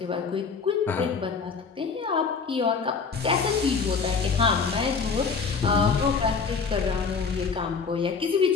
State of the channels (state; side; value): quieter; right; 5.3 dB